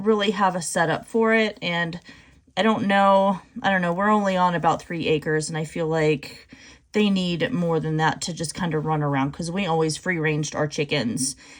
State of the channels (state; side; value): identical; both; correlation 1.00